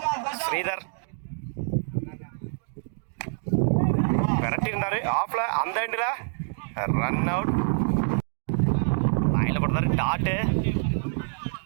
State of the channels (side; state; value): left; silent; digital silence